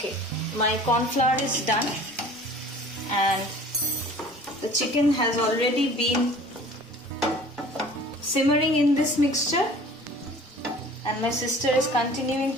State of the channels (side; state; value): both; normal; correlation 0.47